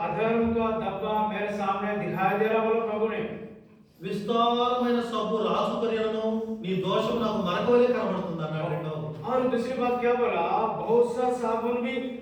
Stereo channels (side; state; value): both; identical; correlation 1.00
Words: अधर्म का धब्बा मेरे सामने दिखाई दे रहा, बोलो प्रभु ने। విస్తారమైన సబ్బు రాసుకొనినను నీ దోషం నాకు మనకవలే కనబడుతుంది అన్నాడు. రెండవది और दूसरी बात क्या बोला, बहुत सा साबुन भी